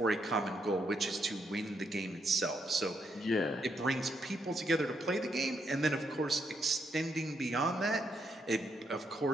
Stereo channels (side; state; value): both; normal; correlation 0.78